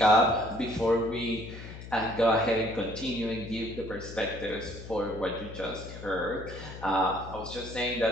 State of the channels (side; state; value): left; noise; hum, 12 dB below the sound